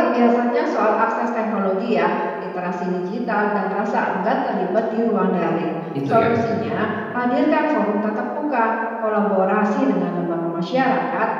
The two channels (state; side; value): identical; both; correlation 1.00